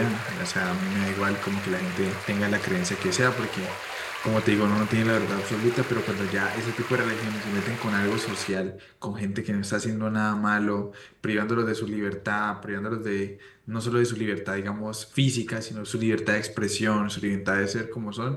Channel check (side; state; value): both; identical; correlation 1.00